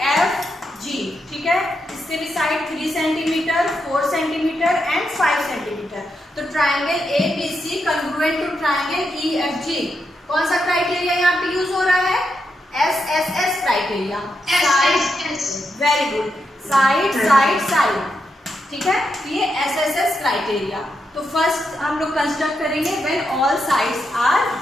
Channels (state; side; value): normal; both; correlation 0.84